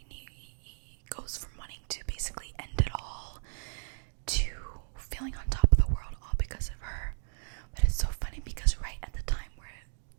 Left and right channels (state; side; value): silent; left; digital silence